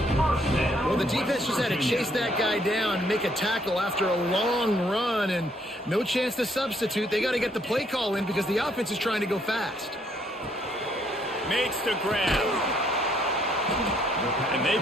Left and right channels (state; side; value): normal; both; correlation 0.68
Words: Well, the defense just had to chase that guy down and make a tackle after a long run, and no chance to substitute. They got to get the play call in because the offense is trying to go fast. Makes the grab. And they